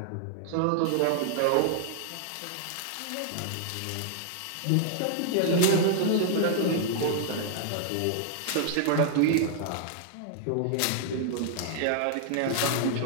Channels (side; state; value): both; different; correlation -0.01